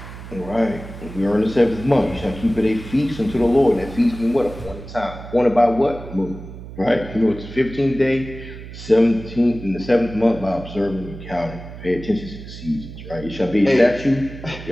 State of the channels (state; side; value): noise; right; hum, 13 dB below the sound